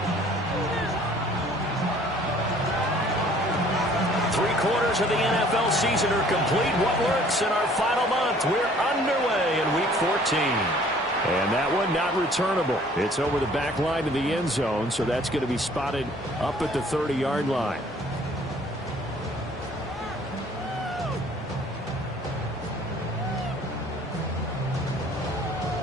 Three-quarters of the NFL season are complete. What works in our final month? We're underway in Week 14. And that one not returnable. It's over the back line of the end zone, so that's going to be spotted up at the 30-yard line.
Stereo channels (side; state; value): both; normal; correlation 0.55